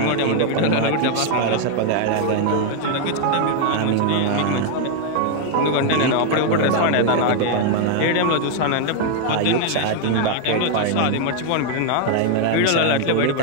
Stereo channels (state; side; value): different; both; correlation 0.00